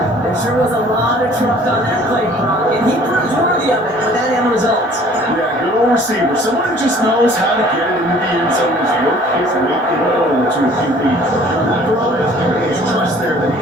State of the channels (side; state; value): both; normal; correlation 0.53